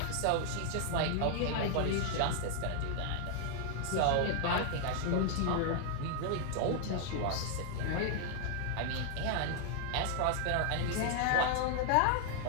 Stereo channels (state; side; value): different; both; correlation 0.00